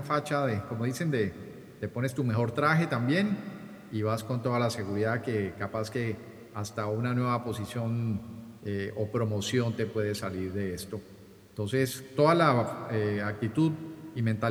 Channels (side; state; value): both; identical; correlation 1.00